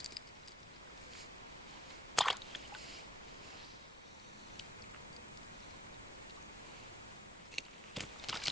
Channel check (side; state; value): both; normal; correlation 0.68